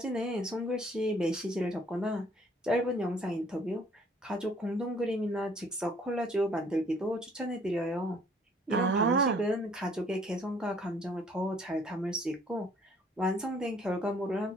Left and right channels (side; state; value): both; normal; correlation 0.60